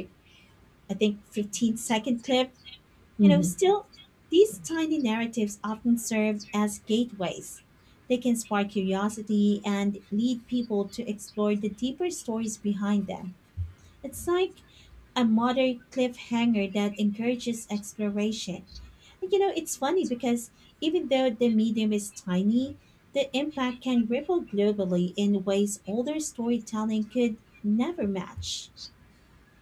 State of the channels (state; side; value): identical; both; correlation 1.00